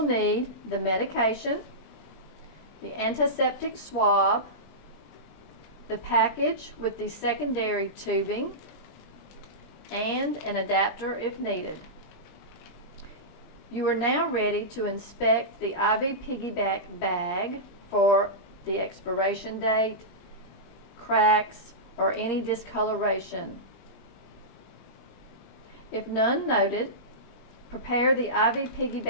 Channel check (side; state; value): right; late; 20 ms